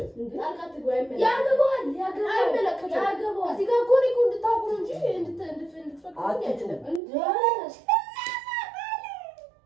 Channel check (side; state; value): left; drops out; at 7.0 s